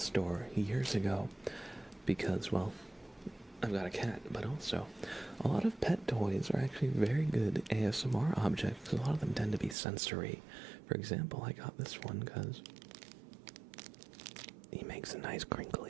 years ago because, well, I've got a cat, but also a lot of pet toys are actually very good ASMR objects. A lot of them tend to be sensory. For example, I got this one because he makes a nice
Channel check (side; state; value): left; drops out; at 9.8 s